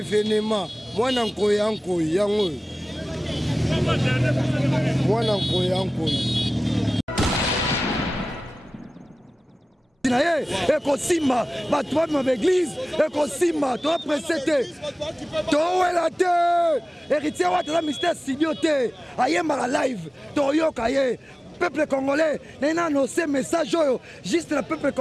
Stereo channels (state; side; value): normal; both; correlation 0.97